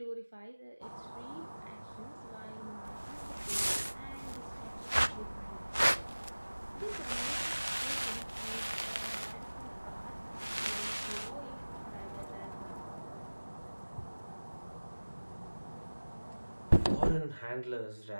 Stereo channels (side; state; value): both; inverted; correlation -1.00